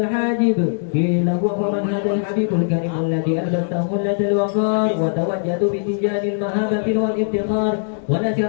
قيل هو من هذا الحبيب الكريم الذي ألبسته خلة الوقار وتوجد بتجاه المهابة والافتخار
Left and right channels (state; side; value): silent; right; digital silence